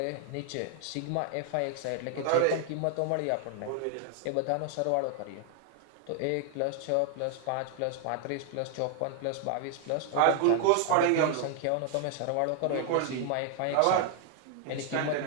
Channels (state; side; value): different; both; correlation 0.00